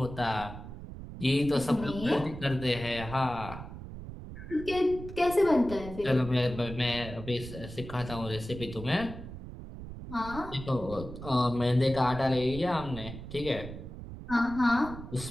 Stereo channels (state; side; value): noise; right; rumble, 11 dB below the sound